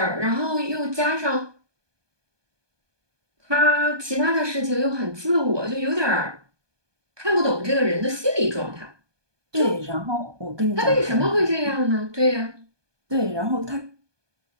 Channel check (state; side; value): late; left; 1.2 ms